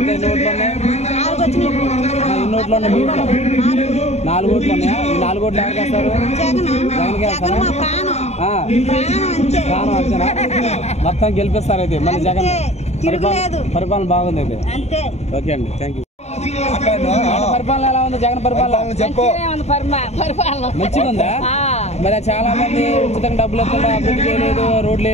ఓట్లు ఉన్నాయి? 4 ఓట్లు ఉన్నాయి. 4 ఓట్లు ఉన్నాయా? 4 ఓట్లు ఎవరికి వేస్తారు? జగన్ ప్రాణం అంతేనా? మొత్తం గెలిపిస్తారు అయితే మళ్ళీ జగన్. పరిపాలన బాగుంది అయితే. ఓకే అండి, థ్యాంక్ యూ. పరిపాలన ఎలా ఉంది? జగన్ పరిపాలన మంచిగా ఉందా? మరి చాలా మంది ఉచితంగా డబ్బులు వస్తుందా, అభివృద్ధి చేయలేదు, రోడ్లు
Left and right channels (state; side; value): late; right; 0.32 ms